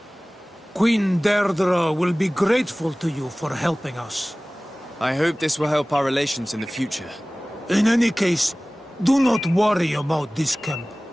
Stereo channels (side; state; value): both; normal; correlation 0.98